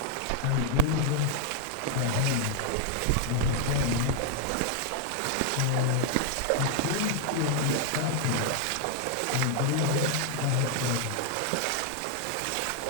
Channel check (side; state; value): both; different; correlation 0.00